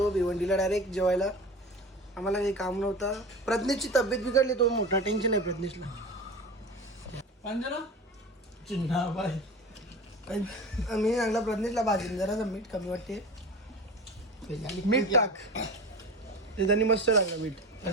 भिवंडीला डायरेक्ट जेवायला. आम्हाला काही काम नव्हतं. प्रज्ञेशची तब्येत बिघडली, तो मोठा टेन्शन आहे प्रज्ञेशला. चिन्हा बाई मी सांगला प्रज्ञेशला भाजीन जरा मीठ कमी वाटते, मीठ टाक. ते त्यांनी मस्त टाकलं मीठ.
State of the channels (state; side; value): normal; both; correlation 0.32